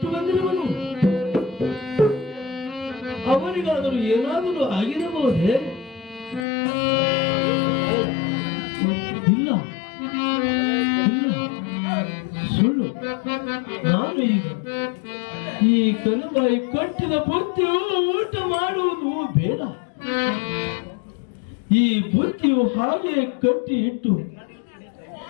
ಬಂದಿರುವನು. ಅವನಿಗಾದರೂ ಏನಾದರೂ ಆಗಿರಬಹುದೇ? ಇಲ್ಲ ಇಲ್ಲ, ಸುಳ್ಳು. ನಾನು ಈಗ ಈ ಕನುಬಾಯಿ ಕಟ್ಟಿದ ಬುತ್ತಿಯು ಊಟ ಮಾಡುವುದು ಬೇಡ. ಈ ಬುತ್ತಿಯು ಹಾಗೆ ಕಟ್ಟಿ ಇಟ್ಟು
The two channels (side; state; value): right; drops out; at 6.5 s